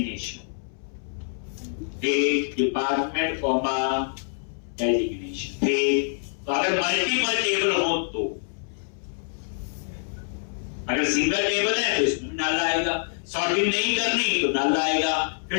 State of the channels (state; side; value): silent; right; 61 dB below the other